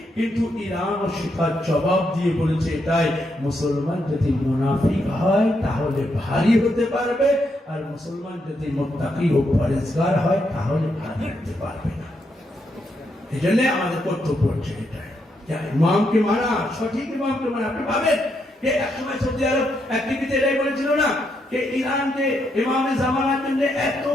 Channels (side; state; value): both; normal; correlation 0.79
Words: কিন্তু ইরান ও শিকার জবাব দিয়ে বলেছে এটাই, মুসলমান যদি মুনাফিক হয় তাহলে ভারী হতে পারবে, আর মুসলমান যদি মুত্তাকি ও পরেজগার হয় তাহলে ভারী হতে পারবে না। এই জন্য আমাদের কর্তব্য হচ্ছে এটাই, ইমামকে মানা, সঠিক ইমামকে মানা। আপনি ভাবেন যে একসময় সৌদি আরব এক টিভিতে এটাই বলেছিল না যে ইরান যে ইমামে জামানার জন্য এত